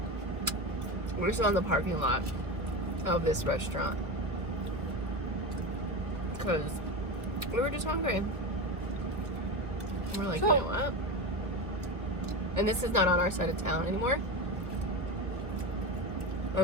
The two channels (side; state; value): left; late; 1.2 ms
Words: We're still in the parking lot of this restaurant. Because we were just hungry. We're like, you know what? And this is not on our side of town anymore.